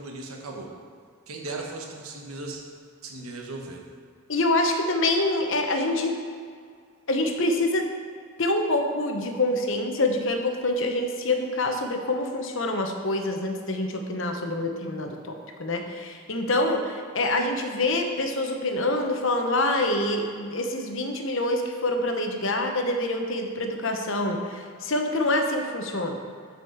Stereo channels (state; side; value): normal; both; correlation 0.00